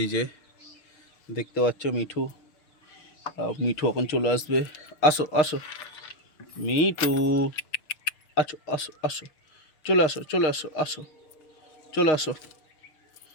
যে দেখতে পাচ্ছ মিঠু মিঠু এখন চলে আসবে। আসো আসো মিঠু, আসো আসো আসো, চলে আসো চলে আসো, আসো চলে আসো।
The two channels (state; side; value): late; right; 6.4 ms